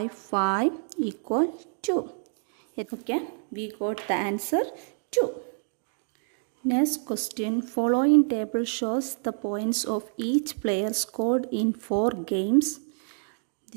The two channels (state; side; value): silent; left; 60 dB below the other